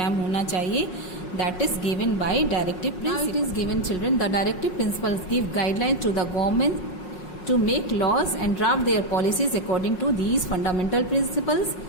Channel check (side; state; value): right; late; 5.5 ms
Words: होना चाहिए, that is given by directive principles. Now it is given, children, the directive principles give guidelines to the government to make laws and draft their policies according to these fundamental principles,